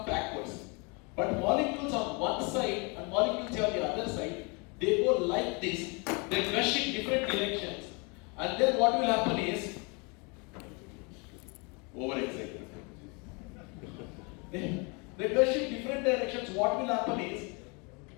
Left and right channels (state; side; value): quieter; right; 31.4 dB